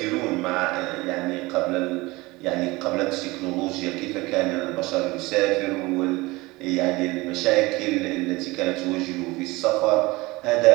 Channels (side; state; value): left; quieter; 22.0 dB